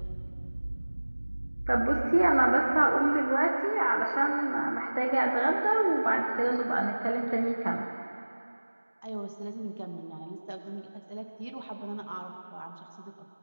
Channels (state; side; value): inverted; both; correlation -1.00